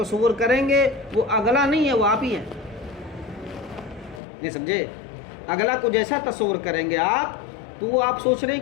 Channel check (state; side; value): drops out; right; at 4.2 s